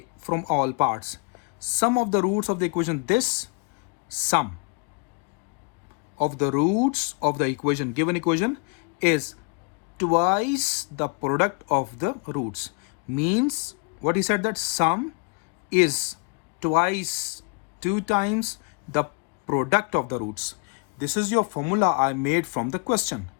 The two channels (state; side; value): quieter; right; 33.4 dB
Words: from all parts. Sum of the roots of the equation. This sum of the roots of the equation, given equation, is twice the product of the roots. Means what he said, that sum is twice, 2 times the product of the roots. This is your formula I made from the question.